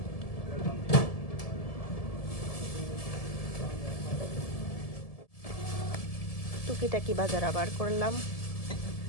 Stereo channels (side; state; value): right; late; 1.7 ms